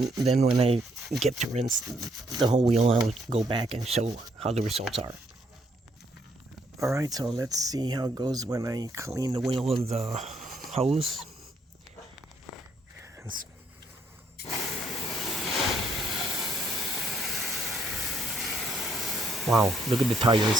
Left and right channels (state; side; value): normal; both; correlation 0.71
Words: then when I get to rinse the whole wheel, I'll go back and show how the results are. Alright, so let's see how it goes when I clean the wheel with the hose. Wow, look at the tire, it's